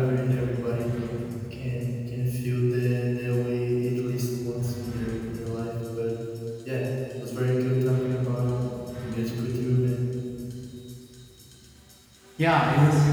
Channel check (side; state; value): both; identical; correlation 1.00